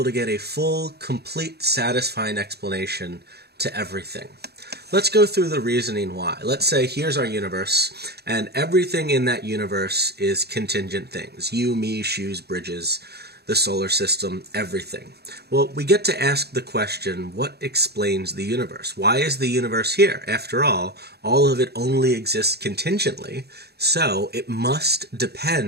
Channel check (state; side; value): late; left; 0.47 ms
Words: to get a full, complete, satisfying explanation to everything. Let's go through the reasoning why. Let's say here's our universe, and everything in that universe is contingent things. You, me, shoes, bridges, the solar system, everything. Well, we get to ask the question, what explains the universe? Why is the universe here? After all of it only exists contingently, so it must